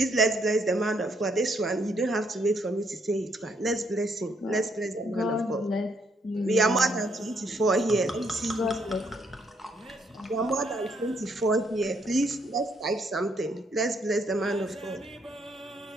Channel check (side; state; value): both; normal; correlation 0.72